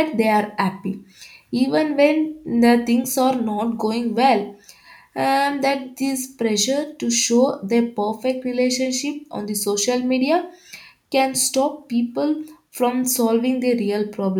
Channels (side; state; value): both; identical; correlation 1.00